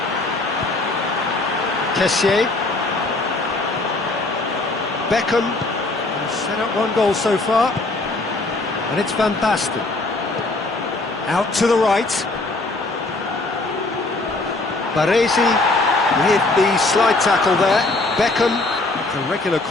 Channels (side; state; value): right; quieter; 3.1 dB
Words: Kessié. Beckham has set up 1 goal so far, and it's Van Basten. Out to the right. Baresi with the slide tackle there. Beckham, the regular